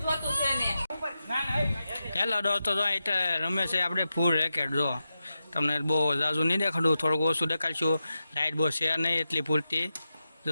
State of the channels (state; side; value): inverted; both; correlation -0.90